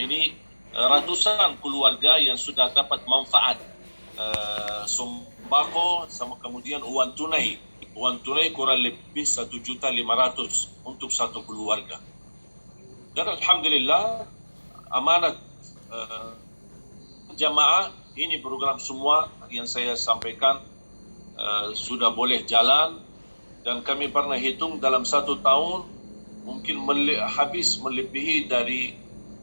ratusan keluarga yang sudah dapat manfaat sembako sama kemudian uang tunai. Uang tunai kurang lebih 1.500.000 untuk satu keluarga. Dan alhamdulillah amanat jamaah ini program semua yang saya sampaikan sudah boleh jalan. Dan kami pernah hitung dalam 1 tahun mungkin habis melebihi dari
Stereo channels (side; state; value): both; inverted; correlation -1.00